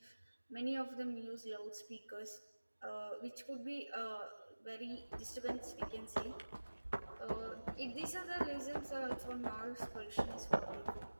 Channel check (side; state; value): both; inverted; correlation -1.00